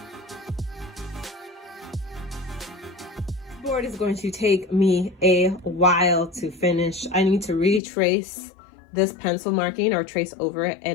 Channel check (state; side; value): drops out; right; at 7.8 s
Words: board is going to take me a while to finish. I need to retrace this pencil marking or trace over it